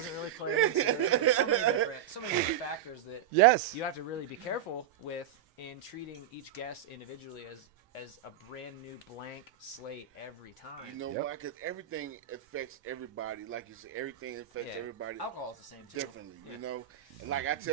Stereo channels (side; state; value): left; quieter; 10.0 dB